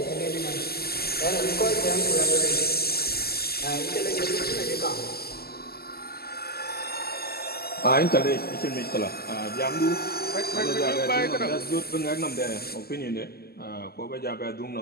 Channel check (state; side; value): late; right; 0.46 ms